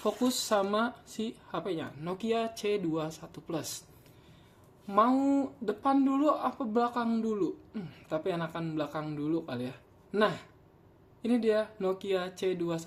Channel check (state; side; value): identical; both; correlation 1.00